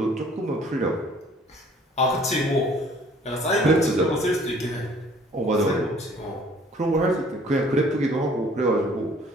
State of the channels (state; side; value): normal; both; correlation 0.55